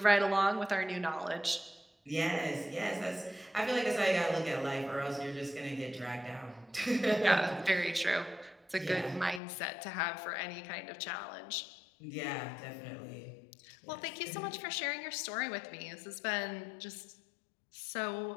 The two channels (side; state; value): right; drops out; at 9.4 s